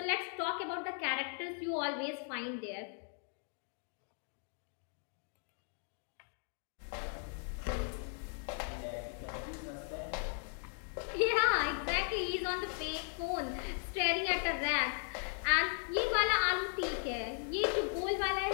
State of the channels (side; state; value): right; silent; 53 dB below the other